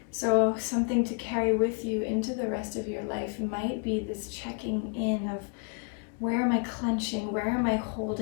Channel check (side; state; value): right; quieter; 37.2 dB